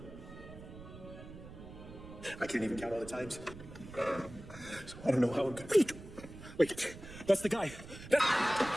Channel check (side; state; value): right; noise; rumble, 14 dB below the sound